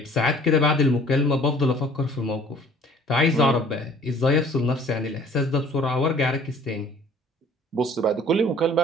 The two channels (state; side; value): normal; both; correlation 0.53